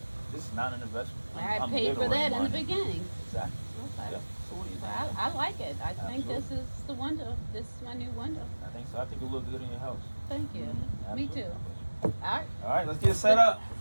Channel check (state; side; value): inverted; both; correlation -1.00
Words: this is not an investment. I paid giving for away that in the money. beginning. Exactly. Okay. Yeah. So what do you think? Well, I like it. I think Absolutely. this is the window. This is my new window. I think so. I think it'll look good in your house. Thank you. Me Absolutely. too. All right. All right, let's get it set up.